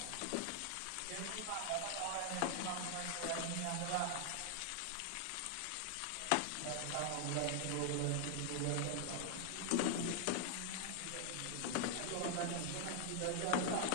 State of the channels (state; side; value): different; both; correlation 0.00